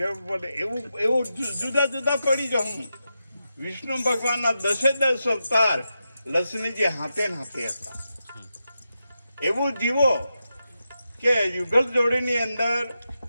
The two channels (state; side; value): inverted; both; correlation -0.88